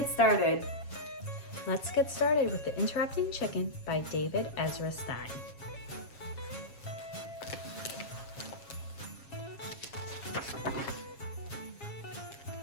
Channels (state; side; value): late; right; 7.3 ms